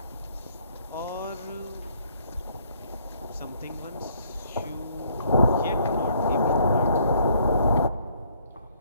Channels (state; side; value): inverted; both; correlation -0.65